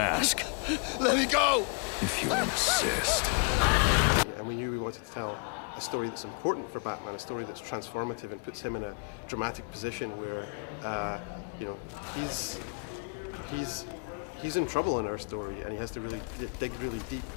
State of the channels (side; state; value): right; quieter; 36.9 dB